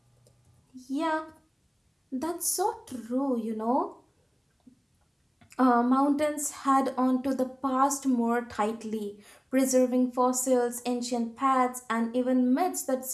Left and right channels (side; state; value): both; identical; correlation 1.00